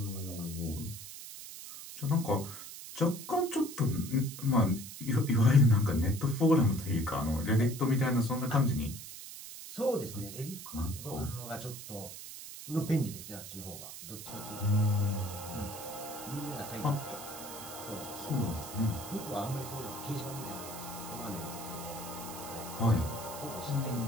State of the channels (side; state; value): right; noise; hiss, 11 dB below the sound